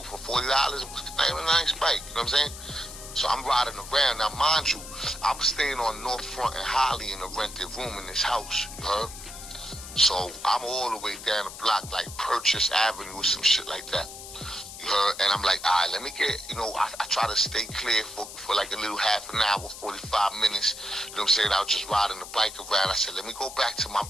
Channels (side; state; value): left; noise; hiss, 13 dB below the sound